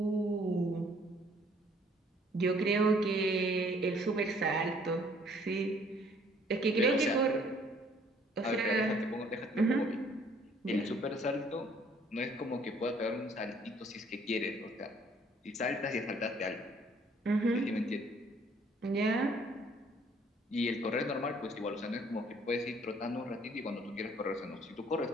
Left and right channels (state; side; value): normal; both; correlation 0.60